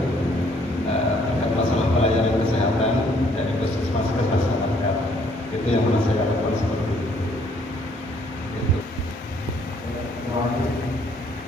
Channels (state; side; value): normal; both; correlation 0.64